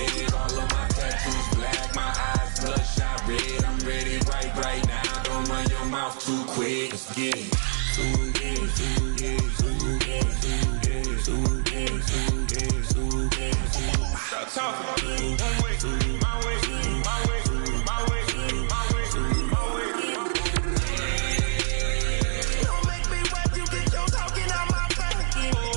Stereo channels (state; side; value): silent; left; 61 dB below the other